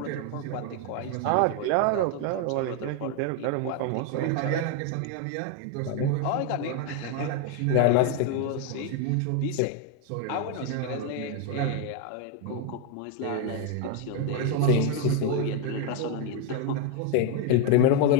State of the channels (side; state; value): both; different; correlation 0.01